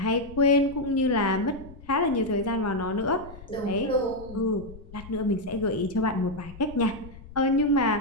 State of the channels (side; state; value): left; noise; rumble, 17 dB below the sound